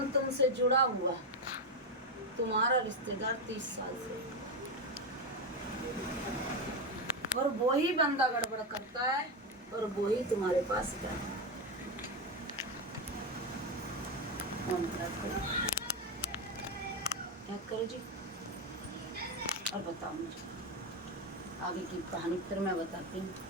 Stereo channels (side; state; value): both; normal; correlation 0.10